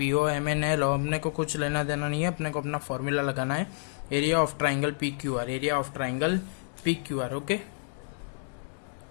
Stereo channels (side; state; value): right; silent; digital silence